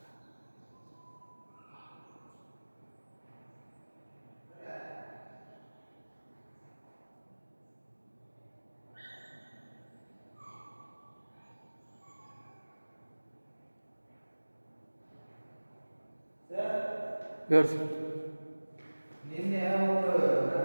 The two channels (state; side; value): inverted; both; correlation -1.00